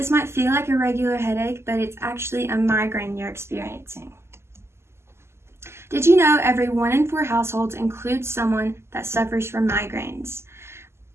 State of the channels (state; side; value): late; left; 0.12 ms